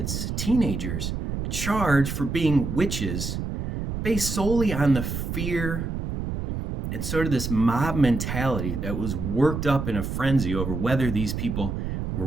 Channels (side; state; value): right; noise; rumble, 4 dB below the sound